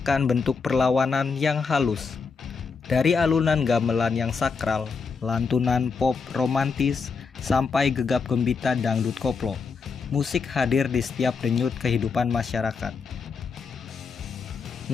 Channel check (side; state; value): right; quieter; 5.1 dB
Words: bentuk perlawanan yang halus. Dari alunan gamelan yang sakral, lantunan pop romantis, sampai gegap gembita dangdut koplo, musik hadir di setiap denyut kehidupan masyarakat.